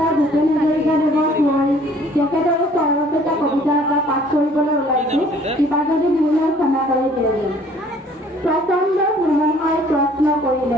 ভূপেন হাজৰিকাদেৱক মই তেখেতৰ চৰৰত এটা কবিতা এটা পাঠ কৰিবলৈ ওলাইছোঁ কিবা যদি ভুল হয় ক্ষমা কৰি দিলে প্ৰচণ্ড ধুমুহাই প্ৰশ্ন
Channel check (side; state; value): both; normal; correlation 0.56